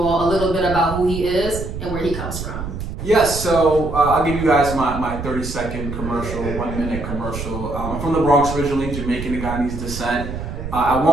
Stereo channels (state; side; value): noise; right; rumble, 7 dB below the sound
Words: all a little bit about who he is and where he comes from. Yes, so I'll give you guys my 30-second commercial, 1-minute commercial. I'm from the Bronx originally, Jamaican Ghanaian descent. At